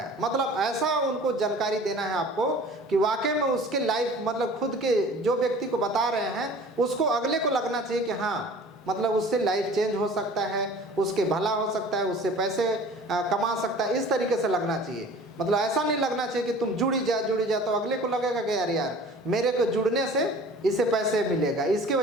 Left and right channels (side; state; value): both; normal; correlation 0.45